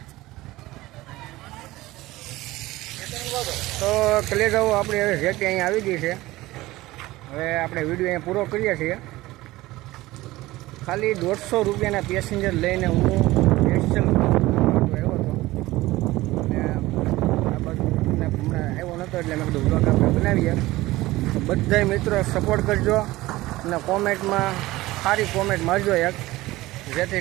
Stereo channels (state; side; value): quieter; left; 18.4 dB